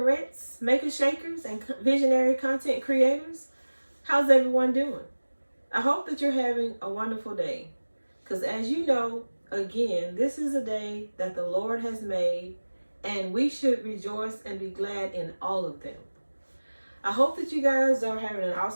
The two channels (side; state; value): both; inverted; correlation -1.00